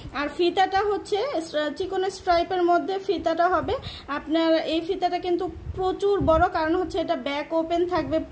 আর ফিতাটা হচ্ছে চিকন স্ট্রাইপের মধ্যে ফিতাটা হবে। আপনার এই ফিতাটা কিন্তু প্রচুর বড়, কারণ হচ্ছে এটা ব্যাক ওপেন থাকবে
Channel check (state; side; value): identical; both; correlation 1.00